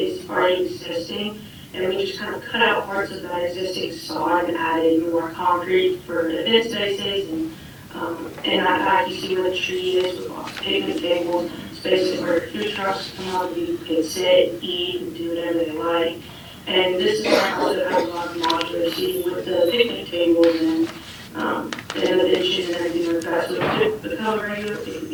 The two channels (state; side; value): identical; both; correlation 1.00